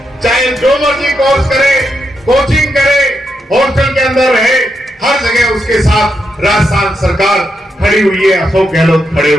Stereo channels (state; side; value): normal; both; correlation 0.83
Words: चाहे जो मर्जी कोर्स करे, कोचिंग करे, हॉस्टल के अंदर रहे, हर जगह उसके साथ राजस्थान सरकार खड़ी हुई है, अशोक गहलोत खड़े